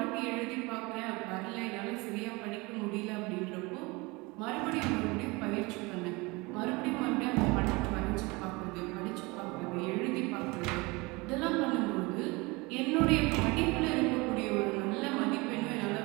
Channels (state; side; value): quieter; left; 24.8 dB